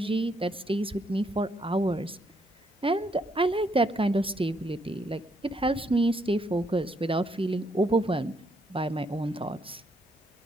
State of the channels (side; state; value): both; normal; correlation 0.74